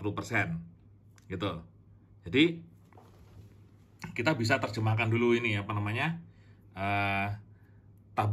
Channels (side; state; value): both; identical; correlation 1.00